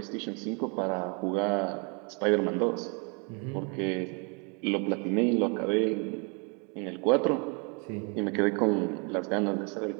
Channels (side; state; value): left; quieter; 34.9 dB